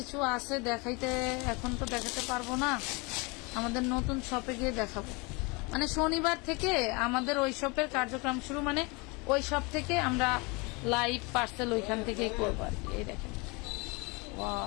আছে দেখাইতে, এখন তো দেখাতে পারবো না, আমাদের নতুন শপে গিয়ে দেখাবো। মানে শনিবার থেকে আমাদের ওই শপের কার্যক্রম শুরু, মানে ওই শপ থেকে আমরা লাইভ পার্সেল ওইখান থেকেই করবো আর কি। এই দেখেন,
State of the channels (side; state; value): right; quieter; 28.1 dB